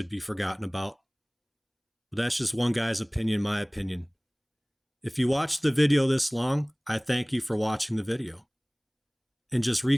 be forgotten about. But that's just one guy's opinion, my opinion. If you watched the video this long, I thank you for watching the video. And just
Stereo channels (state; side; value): identical; both; correlation 1.00